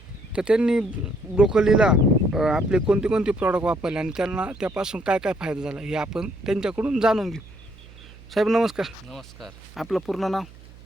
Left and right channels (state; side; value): noise; right; hum, 21 dB below the sound